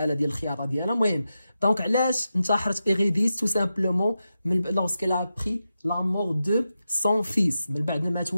ديال الخياطه ديالها. المهم دونك علاش انتحرت ايريديس؟ تو سامبلومون من لورسكيل ا بري لا مور دو سون فيس، من بعد ما مات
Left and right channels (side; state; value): both; inverted; correlation -0.90